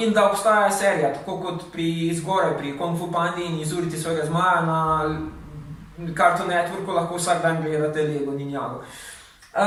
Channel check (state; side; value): identical; both; correlation 1.00